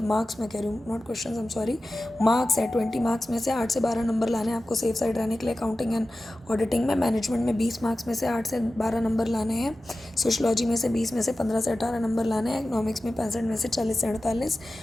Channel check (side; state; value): both; normal; correlation 0.94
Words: मार्क्स मैं कह रही हूँ, not questions, I am sorry, marks है। 20 मार्क्स में से 8 से 12 नंबर लाने हैं आपको सेफ साइड रहने के लिए अकाउंटिंग एंड ऑडिटिंग में। मैनेजमेंट में 20 मार्क्स में से 8 से 12 नंबर लाने हैं। सोशलॉजी में से 20 में से 15 से 18 नंबर लाने हैं। इकोनॉमिक्स में 65 में से 40 से 48